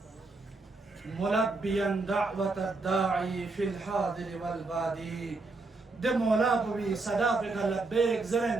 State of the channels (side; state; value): left; quieter; 3.5 dB